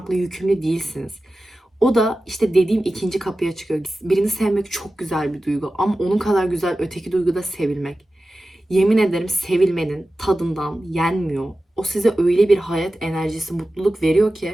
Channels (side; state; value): both; normal; correlation 0.95